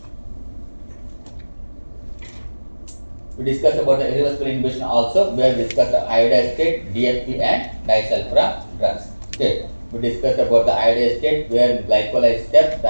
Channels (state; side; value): inverted; both; correlation -1.00